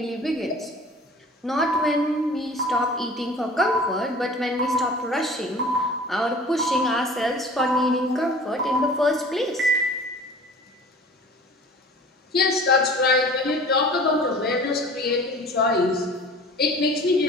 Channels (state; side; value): normal; both; correlation 0.44